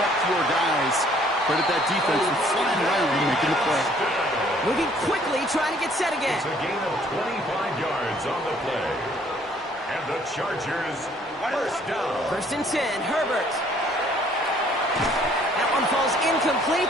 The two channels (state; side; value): normal; both; correlation 0.60